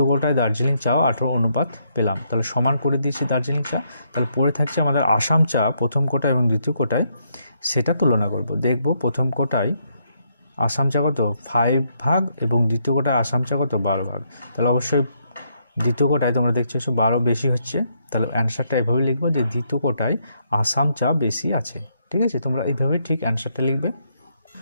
কোটায় দার্জিলিং চাও 18 অনুপাত পেলাম। তাহলে সমান করে দিয়েছি দার্জিলিং চা। তাহলে পড়ে থাকছে আমাদের আসাম চা প্রথম কোটায় এবং দ্বিতীয় কোটায়, সেটা তুলনা করব। দেখব প্রথম কোটায় আসাম চা কত 5 ভাগ এবং দ্বিতীয় কোটায় আসাম চা কত 12 ভাগ। তাহলে অবশ্যই দ্বিতীয় কোটায় তোমরা দেখছো 12 বেশি হচ্ছে। তাহলে অ্যান্সারটা এভাবে লিখবো যে দ্বিতীয় কোটায় আসাম চা বেশি আছে। ঠিক আছে, তোমরা এইভাবে ঠিক অ্যান্সারটা লিখবে।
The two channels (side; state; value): both; inverted; correlation -0.75